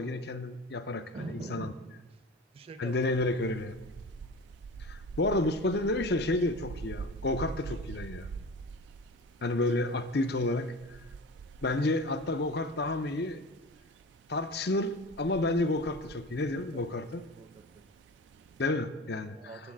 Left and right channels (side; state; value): both; normal; correlation 0.34